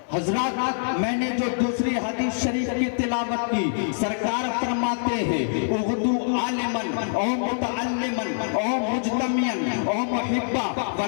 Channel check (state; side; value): silent; right; digital silence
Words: حضرات میں نے جو دوسری حدیث شریف کی تلاوت کی، سرکار فرماتے ہیں اغدو عالمن او متعلمن او مجتمعن او محبا